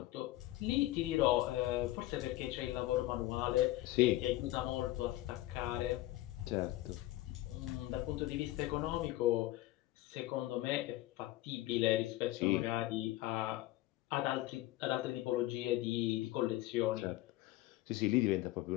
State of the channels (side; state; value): right; quieter; 16.8 dB